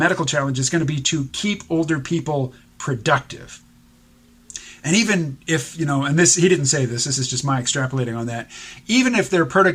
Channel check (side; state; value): both; identical; correlation 1.00